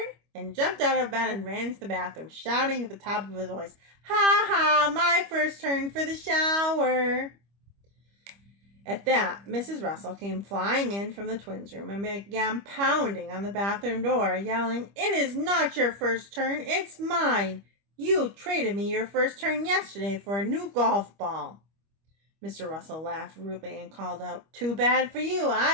and jumped out of bed and ran into the bathroom, shouting at the top of his voice, "Ha ha, my first turn for the shower." At that, Mrs. Russell came flying in from the twins' room and began pounding on the bathroom door, yelling, "It is not your first turn, it's mine. You traded me your first turn yesterday for a new golf ball." Mr. Russell laughed rudely and called out, "Too bad for you,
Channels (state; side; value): late; left; 25 ms